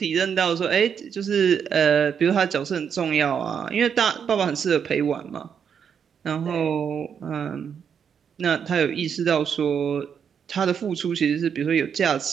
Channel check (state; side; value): quieter; left; 7.4 dB